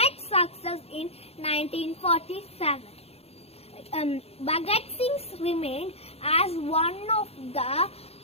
success in 1947. Bhagat Singh remained as one of the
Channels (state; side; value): late; right; 0.29 ms